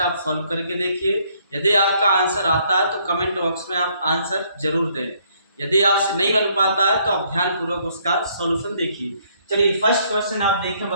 सॉल्व करके देखिए। यदि आपका आंसर आता है तो कमेंट बॉक्स में आप आंसर जरूर दें। यदि आपसे नहीं बन पाता है तो आप ध्यानपूर्वक उसका सॉल्यूशन देखिए। चलिए फर्स्ट क्वेश्चन आप देखें,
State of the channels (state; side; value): inverted; both; correlation -0.67